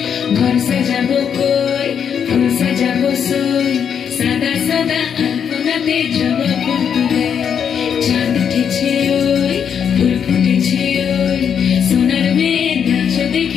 ঘর সাজাবো কই ফুল সাজাবো সই সাদা সাদা আলপনাতে জবা ফুল তুলে চাঁদ উঠেছে ওই ফুল ফুটেছে ওই সোনার মেয়ে নাচ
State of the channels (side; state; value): right; quieter; 7.7 dB